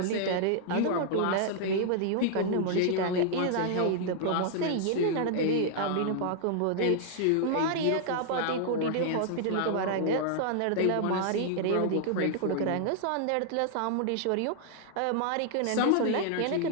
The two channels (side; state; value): both; different; correlation -0.01